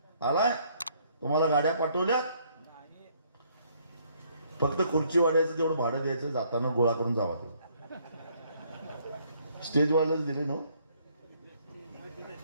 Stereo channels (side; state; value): both; inverted; correlation -0.66